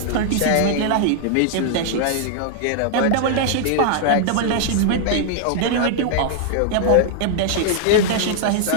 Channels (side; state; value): both; different; correlation -0.01